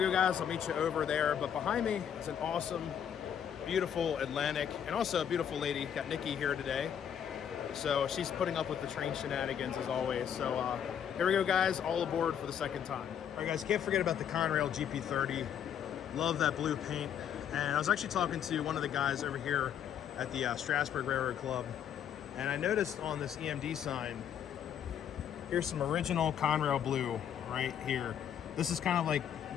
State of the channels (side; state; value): right; quieter; 9.0 dB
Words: go, guys. I'll meet you over there. But behind me is an awesome, beautiful Atlantic, and also a beautiful lady. Got Nikki here today. So she's putting up with the train shenanigans as always. So here we go, guys. All aboard for the second time. All right, guys. Can't forget about the Conrail GP30. Love that blue paint. And I was actually talking to one of the guys over here at the Strasburg Railroad Club, and I noticed on this EMD sign, here's some original Conrail blue right here. This is kind of like a